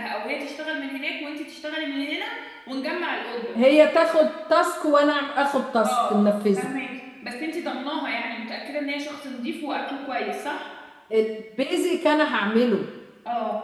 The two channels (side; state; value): both; identical; correlation 1.00